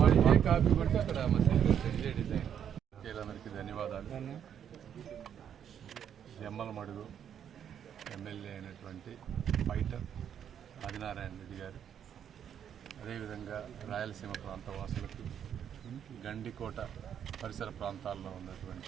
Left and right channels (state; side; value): quieter; left; 8.9 dB